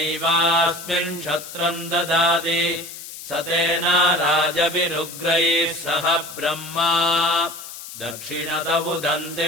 क्षत्रम् ददाति सतेन राजभिरुग्रैः सह ब्रह्मा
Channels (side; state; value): left; noise; hiss, 12 dB below the sound